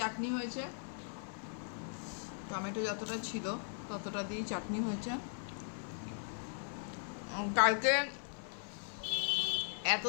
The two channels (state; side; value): silent; right; 52 dB below the other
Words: হয়েছে, টমেটো যতটা ছিল ততটা দিয়েই চাটনি হয়েছে। কালকে